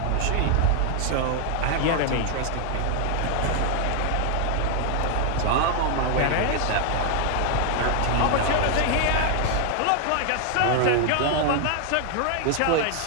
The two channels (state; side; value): different; both; correlation 0.00